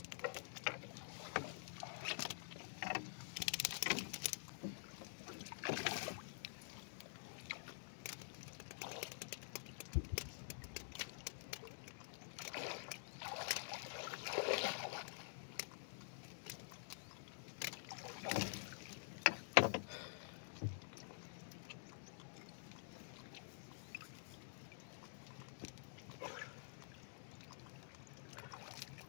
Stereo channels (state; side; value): silent; right; digital silence